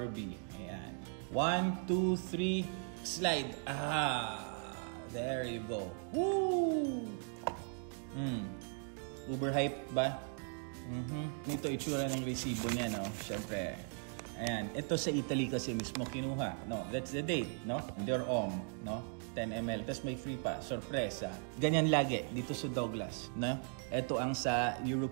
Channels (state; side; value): silent; left; 52 dB below the other